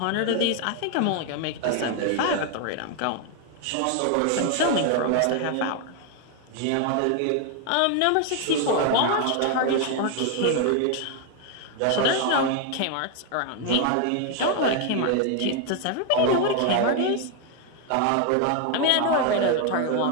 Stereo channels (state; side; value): different; both; correlation 0.01